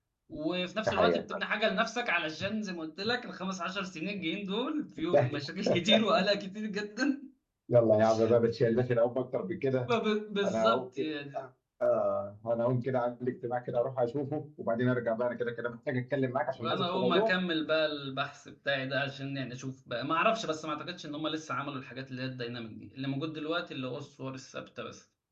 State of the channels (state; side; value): identical; both; correlation 1.00